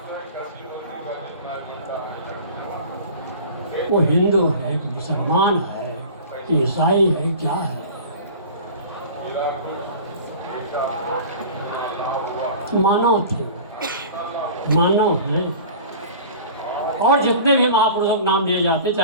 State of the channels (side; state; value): both; inverted; correlation -0.40